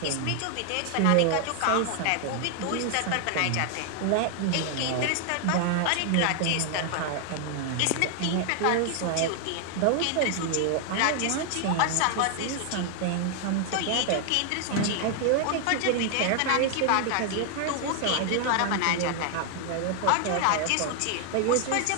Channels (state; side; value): different; both; correlation 0.00